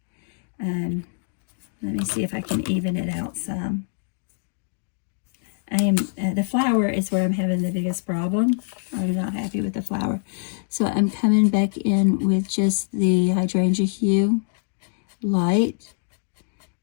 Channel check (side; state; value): right; silent; digital silence